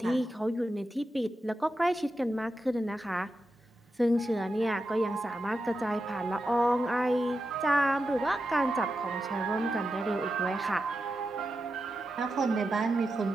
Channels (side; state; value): both; normal; correlation 0.89